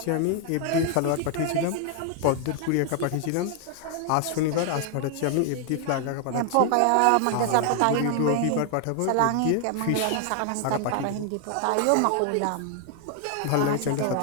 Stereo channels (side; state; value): both; different; correlation 0.00